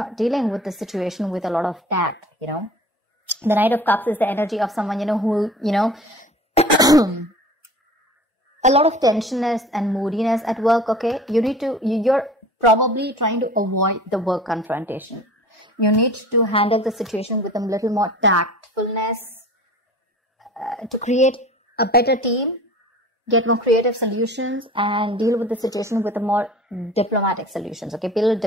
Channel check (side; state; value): both; normal; correlation 0.42